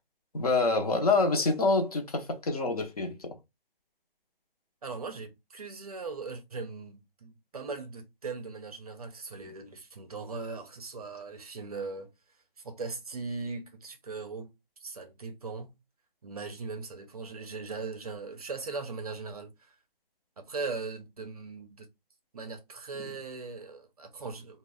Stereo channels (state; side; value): normal; both; correlation 0.11